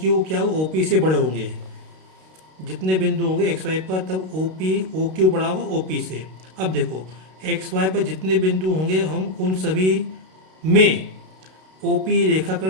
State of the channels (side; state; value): left; late; 32 ms